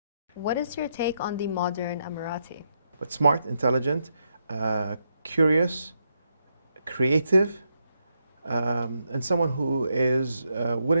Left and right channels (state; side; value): inverted; both; correlation -0.81